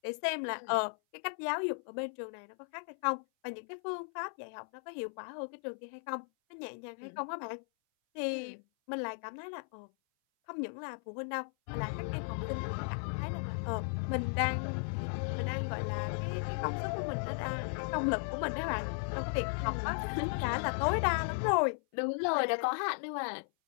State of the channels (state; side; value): silent; right; 54 dB below the other